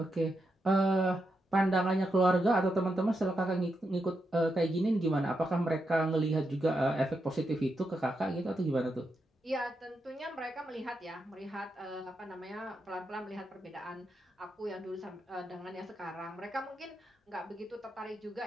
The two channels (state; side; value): normal; both; correlation 0.84